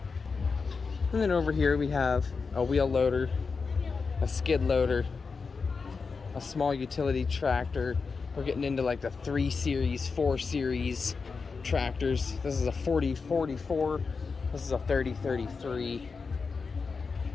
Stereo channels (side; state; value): right; quieter; 4.8 dB